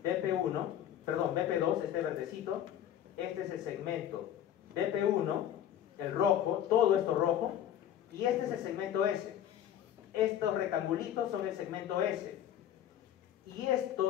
BP2, este verdecito. Este es el segmento BP1, el rojo, todo esto rojo, y este es el segmento S. Estos rectangulitos son el segmento S, y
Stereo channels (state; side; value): quieter; right; 10.7 dB